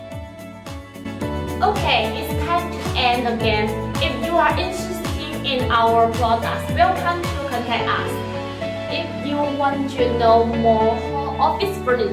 Okay, it's time to end again. If you are interested in our products, welcome to contact us. If you want to know more office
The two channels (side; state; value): both; identical; correlation 1.00